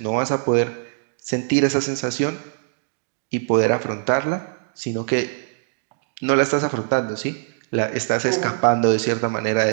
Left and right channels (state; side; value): silent; left; digital silence